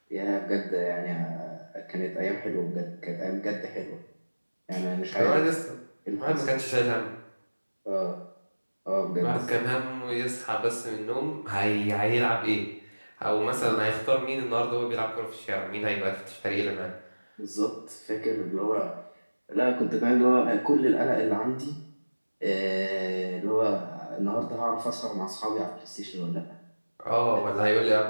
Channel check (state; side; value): inverted; both; correlation -1.00